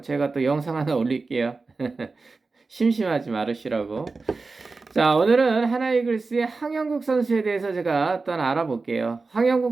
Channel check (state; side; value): quieter; left; 4.0 dB